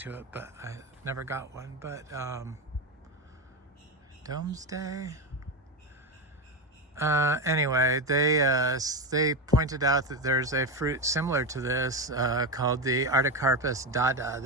it, but I never got one. But Domesday. Anyway, they pointed out that there's a fruit similar to this called the Artocarpus dada.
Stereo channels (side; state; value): both; normal; correlation 0.14